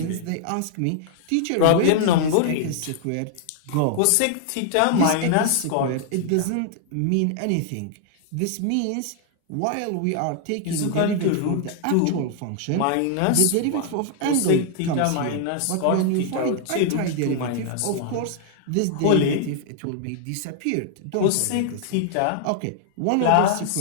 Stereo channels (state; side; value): different; both; correlation -0.01